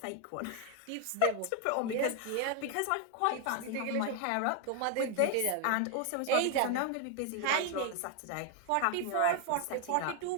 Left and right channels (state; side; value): different; both; correlation 0.01